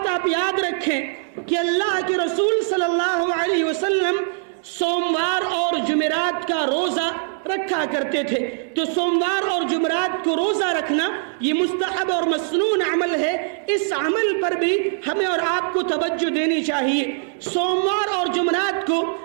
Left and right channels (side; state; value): left; silent; digital silence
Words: آپ یاد رکھیں کہ اللہ کے رسول صلی اللہ علیہ وسلم سوموار اور جمعرات کا روزہ رکھا کرتے تھے۔ تو سوموار اور جمعرات کو روزہ رکھنا یہ مستحب اور مسنون عمل ہے۔ اس عمل پر بھی ہمیں اور آپ کو توجہ دینی چاہیے۔ سوموار اور جمعرات کو